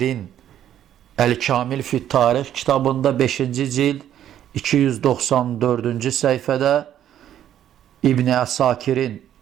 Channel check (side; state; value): left; quieter; 10.9 dB